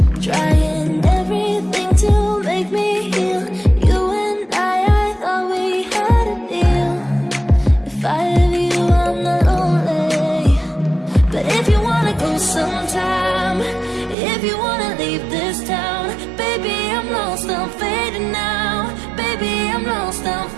trying everything to make me heal. You and I thought we had a deal. If I have you, I'm not lonely. But if you wanna go sometime, if you wanna leave this town, baby, I'm lost, I'm fading now. Baby, I'm lost, I'm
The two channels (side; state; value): left; drops out; at 14.2 s